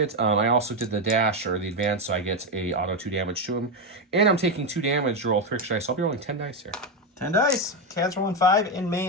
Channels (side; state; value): both; normal; correlation 0.08